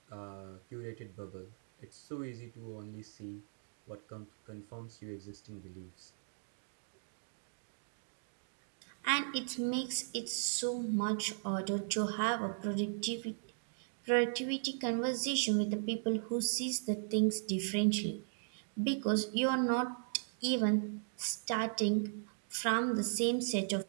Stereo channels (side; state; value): left; silent; digital silence